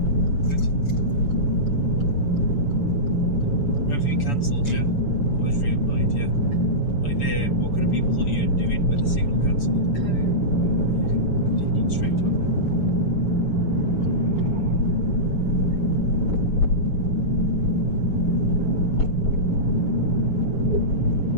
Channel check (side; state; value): right; late; 6.9 ms